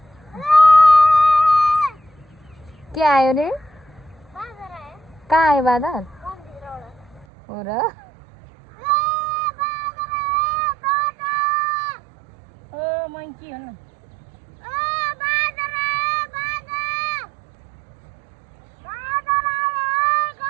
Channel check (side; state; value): left; drops out; at 7.2 s